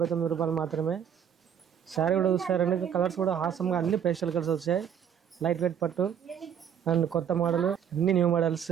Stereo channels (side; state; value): left; quieter; 8.7 dB